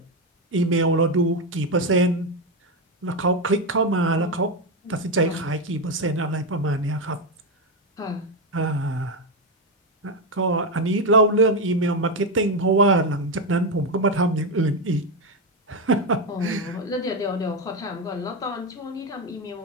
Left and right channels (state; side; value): normal; both; correlation 0.09